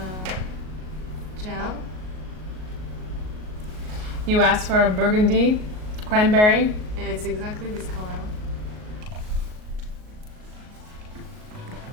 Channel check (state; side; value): late; left; 38 ms